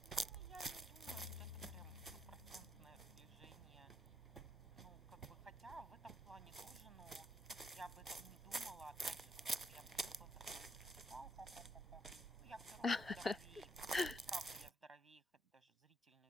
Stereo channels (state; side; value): normal; both; correlation 0.75